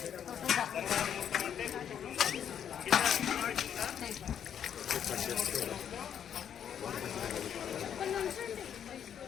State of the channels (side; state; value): right; quieter; 8.8 dB